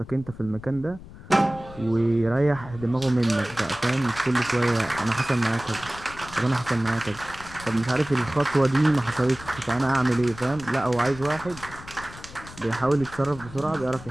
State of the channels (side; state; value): left; noise; rumble, 16 dB below the sound